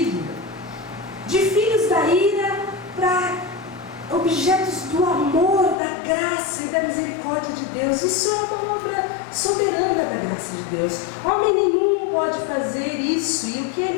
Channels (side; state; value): right; drops out; at 5.8 s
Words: de filhos da ira para objetos do amor, da graça e da misericórdia de Deus. Isso é uma obra soberana da graça de Deus. Homem nenhum pode fazer isso, e o que é